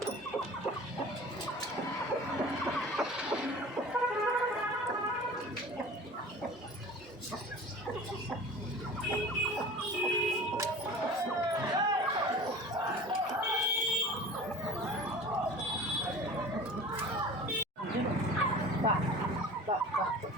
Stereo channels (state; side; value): normal; both; correlation 0.39